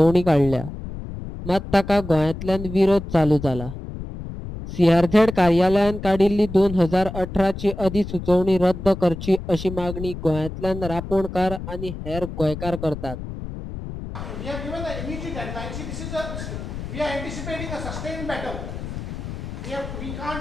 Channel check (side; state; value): left; noise; rumble, 9 dB below the sound